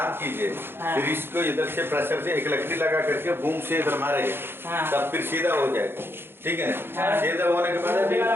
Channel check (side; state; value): left; late; 0.11 ms